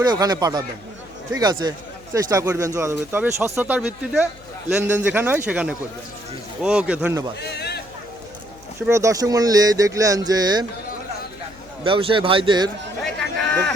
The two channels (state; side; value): noise; left; hum, 24 dB below the sound